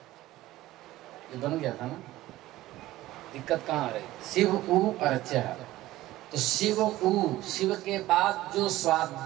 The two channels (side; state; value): left; quieter; 16.3 dB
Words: ये बन गया था ना, दिक्कत कहाँ आ रही? शिव उ अर्चः। तो शिव उ, शिव के बाद जो